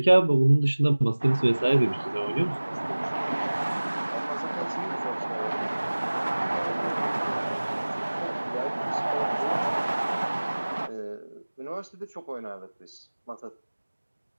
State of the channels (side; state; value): both; inverted; correlation -1.00